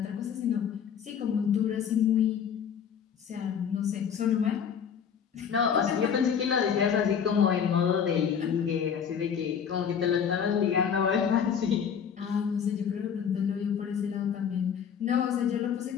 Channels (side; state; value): right; quieter; 7.6 dB